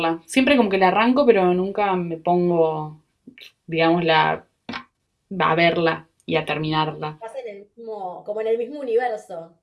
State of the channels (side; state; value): both; identical; correlation 1.00